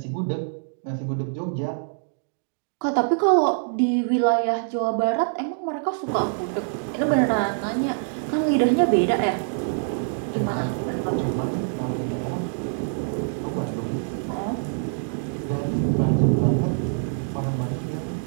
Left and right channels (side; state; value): left; silent; digital silence